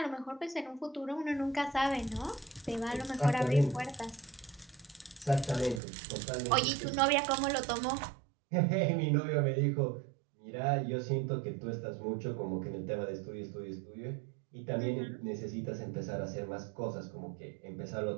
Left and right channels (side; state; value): left; drops out; at 5.8 s